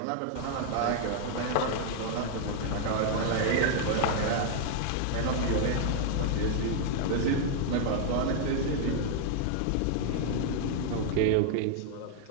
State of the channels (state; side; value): different; both; correlation 0.00